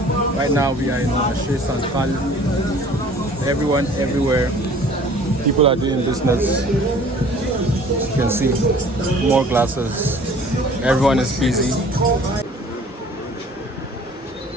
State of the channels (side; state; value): both; normal; correlation 0.50